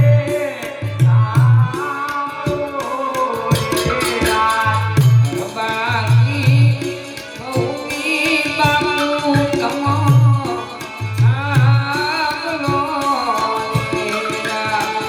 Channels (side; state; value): both; identical; correlation 1.00